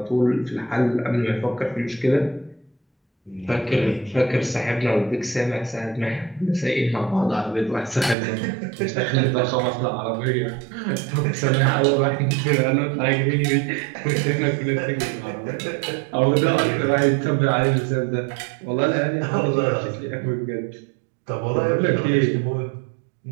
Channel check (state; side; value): drops out; left; at 8.2 s